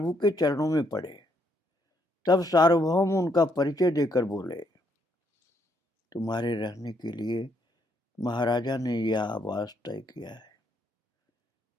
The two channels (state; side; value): normal; both; correlation 0.72